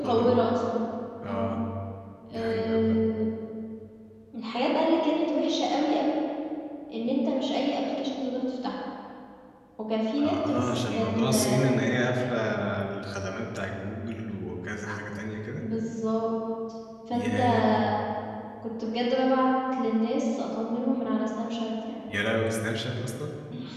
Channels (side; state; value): both; identical; correlation 1.00